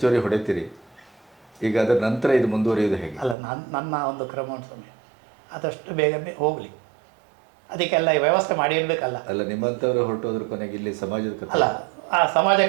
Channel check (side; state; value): left; drops out; at 3.4 s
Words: ಹೊಡಿತೀರಿ. ಈಗ ಅದರ ನಂತರ ಇದು ಮುಂದುವರಿಯೋದು ಹೇಗೆ? ಅಲ್ಲ, ನನ್ನ ಒಂದು ಕ್ರಮ ಸಮಯ ಆದಷ್ಟು ಬೇಗ ಹೋಗಲಿ, ಅದಕ್ಕೆಲ್ಲ ವ್ಯವಸ್ಥೆ ಮಾಡಿ ಇರಬೇಕಲ್ಲ. ಅಲ್ಲ, ನಿಮ್ಮಂಥವ್ರು ಹೊರಟೋದ್ರ ಕೊನೆಗೆ ಇಲ್ಲಿ ಸಮಾಜದ ಅಲ್ಲ, ಆ